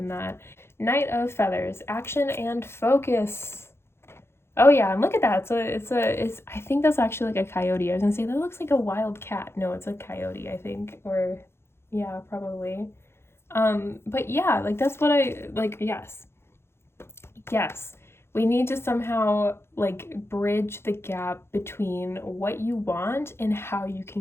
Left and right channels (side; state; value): right; late; 0.12 ms